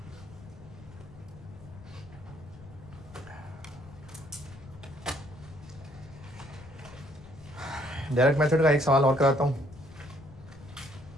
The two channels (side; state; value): left; noise; rumble, 18 dB below the sound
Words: डायरेक्ट मेथड का एक सवाल और कराता हूँ,